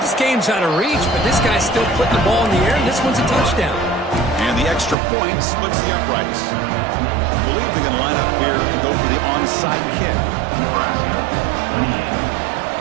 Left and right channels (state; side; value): drops out; left; at 5.0 s